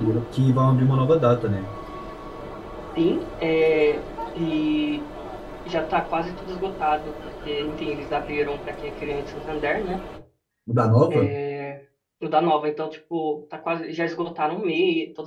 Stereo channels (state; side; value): identical; both; correlation 1.00